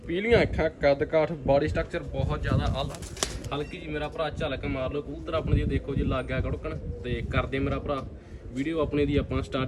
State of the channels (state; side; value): identical; both; correlation 1.00